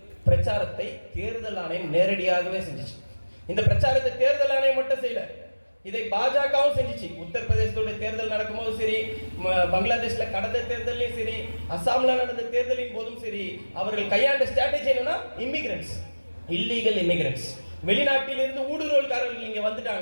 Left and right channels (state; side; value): inverted; both; correlation -1.00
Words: பிரச்சாரத்தை தேர்தல் ஆணையம் நேரடியாகவே செஞ்சிச்சு. இந்த பிரச்சாரத்தை தேர்தல் ஆணையம் மட்டும் செய்யல, இதை பாஜகவும் செஞ்சிச்சு. உத்தரப்பிரதேசத்துடைய தேர்தல் நடக்கும்போது சரி, பங்களாதேஷ்ல கடந்த தேர்தலையும் சரி, அசாம்ல நடந்த தேர்தலின் போதும் சரி, அவர்கள் கையாண்ட ஸ்ட்ராட்டஜி என்னன்னா, இமிகிரன்ட்ஸ், இல்லீகல் இமிகிரன்ட்ஸ், வெளிநாட்டிலிருந்து ஊடுருவல்காரர்கள் இங்க